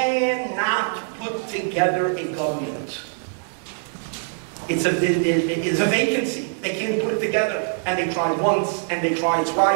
put together a government. It's a vacancy. They can't put it together, and they tried once, and they tried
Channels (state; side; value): silent; left; digital silence